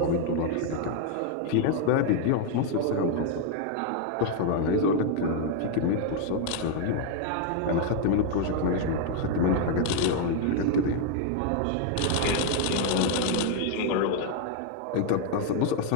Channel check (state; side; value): different; both; correlation 0.01